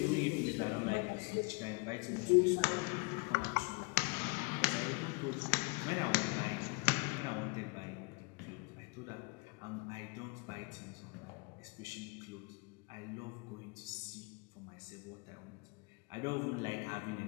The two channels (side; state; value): right; quieter; 31.2 dB